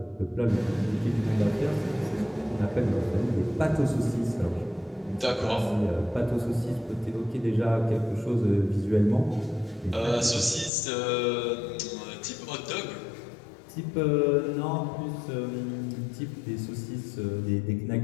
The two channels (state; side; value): drops out; right; at 10.7 s